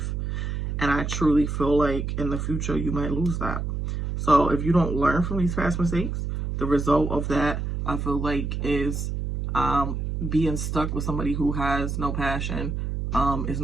And I truly feel like in the future, you might lose that. So if you don't learn from these past mistakes, the result of that, I feel like, is being stuck with somebody who has no passion, is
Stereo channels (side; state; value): right; noise; hum, 2 dB below the sound